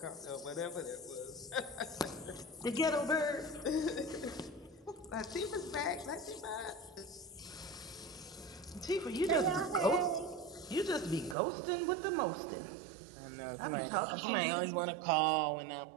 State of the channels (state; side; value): drops out; left; at 11.4 s